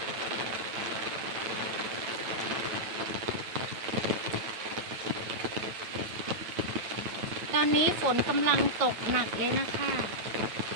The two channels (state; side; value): late; left; 9.2 ms